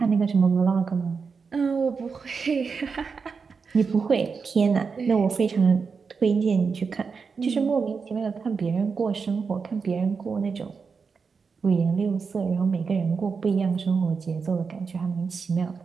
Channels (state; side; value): quieter; left; 5.3 dB